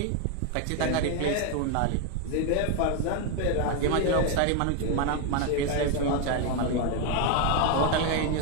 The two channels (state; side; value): different; both; correlation 0.01